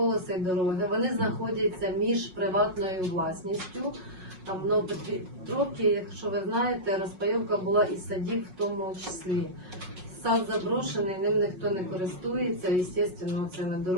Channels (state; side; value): late; left; 5.4 ms